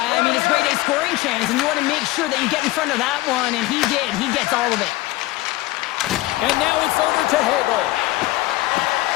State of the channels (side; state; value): right; quieter; 18.6 dB